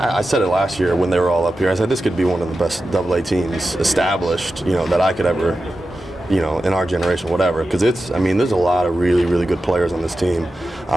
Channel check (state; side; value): normal; both; correlation 0.92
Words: said it last year when they were all up here. I said this could be one of the best Double-A teams established, that I could ever. In our generation, whatever, because there's a lot of really, really good players on this team.